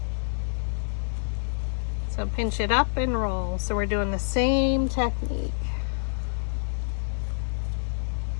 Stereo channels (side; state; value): right; silent; 60 dB below the other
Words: So pinch it up and roll. So we're doing the same technique.